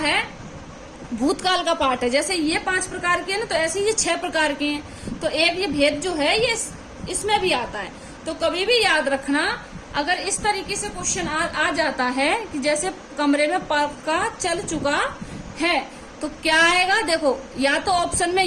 भूतकाल का पार्ट है। जैसे ये 5 प्रकार के हैं ना, तो ऐसे ये 6 प्रकार के हैं। तो एक ये भेद जो है ये इसमें भी आता है। तो कभी भी याद रखना, अगर इस तरीके से क्वेश्चन आ जाता है कि जैसे कमरे में पंखा चल चुका है, तो क्या आएगा? देखो या तो ऑप्शन में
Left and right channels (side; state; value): both; identical; correlation 1.00